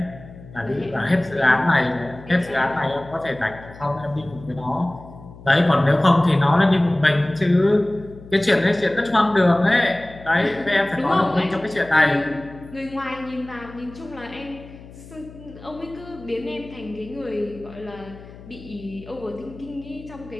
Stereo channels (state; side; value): noise; left; hum, 18 dB below the sound